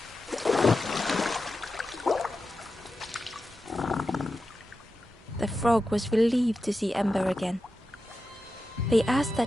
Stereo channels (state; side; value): normal; both; correlation 0.91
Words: The frog was relieved to see Ember again. They asked that